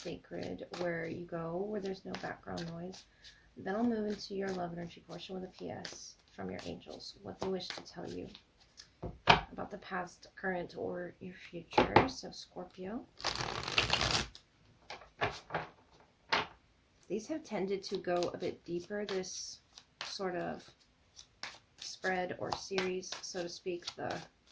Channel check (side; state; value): both; identical; correlation 1.00